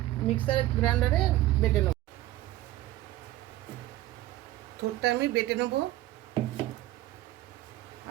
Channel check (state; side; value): quieter; left; 15.9 dB